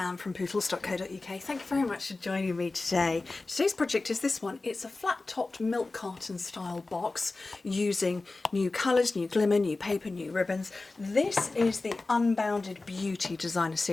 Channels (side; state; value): right; quieter; 3.4 dB